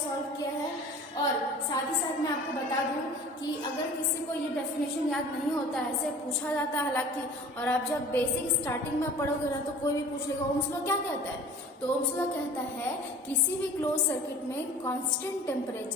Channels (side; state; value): both; normal; correlation 0.44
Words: सॉल्व किया है। और साथ ही साथ मैं आपको बता दूं कि अगर किसी को ये डेफिनेशन याद नहीं होता है, ऐसे पूछा जाता है हालांकि, और आप जब बेसिक स्टार्टिंग में पढ़ोगे ना तो कोई भी पूछ लेगा ओम्स लॉ क्या कहता है। तो ओम्स लॉ कहता है किसी भी क्लोज सर्किट में कांस्टेंट